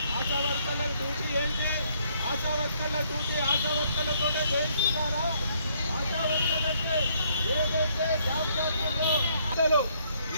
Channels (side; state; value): both; inverted; correlation -0.68